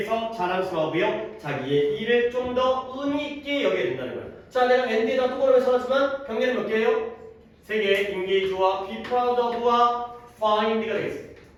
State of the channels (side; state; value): both; identical; correlation 1.00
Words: 자랑스러워하고요. 자기의 일을 좀 더 의미 있게 여기게 된다는 거예요. 자, 내가 엔드에다 똑바로 써놨지만 경계는 몇 개예요? 3개. engage와 be proud of와 find가 되겠습니다.